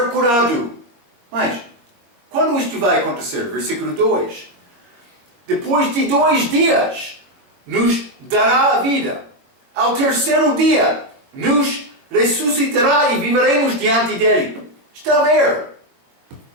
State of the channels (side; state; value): left; late; 21 ms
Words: curado. Mas, quando isto vai acontecer? Versículo 2. Depois de 2 dias, nos dará a vida. Ao terceiro dia, nos ressuscitará e viveremos diante dele. Está a ver?